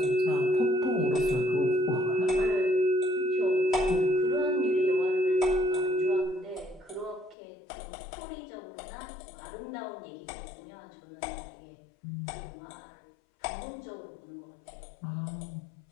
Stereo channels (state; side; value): drops out; right; at 7.4 s